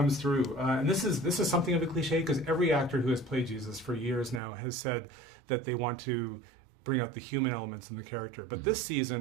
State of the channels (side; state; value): left; drops out; at 4.4 s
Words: through, and this is something of a cliche, because every actor who has played Jesus for years now has said that they want to bring out the human elements in the character. But this